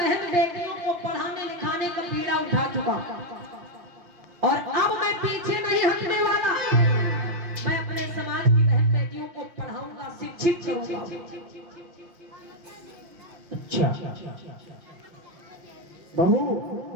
बेटियों को पढ़ाने लिखाने का बीड़ा उठा चुका और अब मैं पीछे नहीं हटने वाला। मैं अपने समाज की बहन बेटियों को पढ़ाऊंगा, शिक्षित करूंगा। अच्छा बहू,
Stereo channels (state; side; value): late; left; 5.7 ms